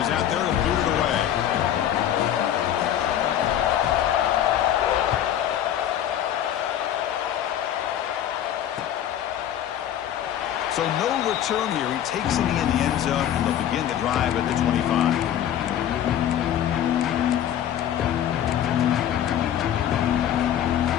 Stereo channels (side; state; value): right; quieter; 10.7 dB